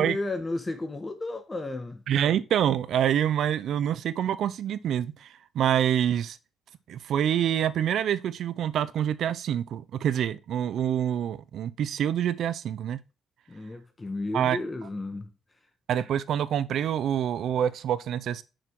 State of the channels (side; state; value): left; quieter; 8.2 dB